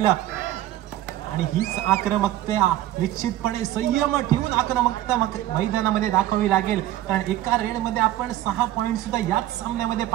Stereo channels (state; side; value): quieter; left; 14.0 dB